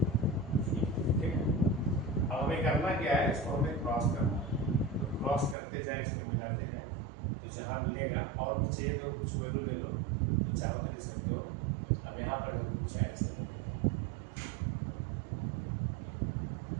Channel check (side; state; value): left; drops out; at 5.6 s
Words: ठीक है। अब हमें करना क्या है, इसको हमें क्रॉस करना है, तो क्रॉस करते जाए, इसको मिलाते जाए, तो जहाँ मिलेगा और भी चाहिए तो कुछ वैल्यू ले लो, तो चाहो तो ले सकते हो। अब यहाँ पर कुछ ऐसा